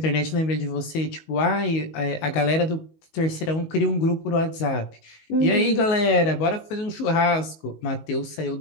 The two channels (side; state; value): right; late; 19 ms